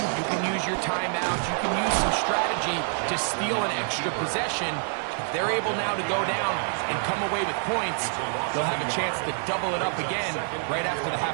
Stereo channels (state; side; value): silent; left; 59 dB below the other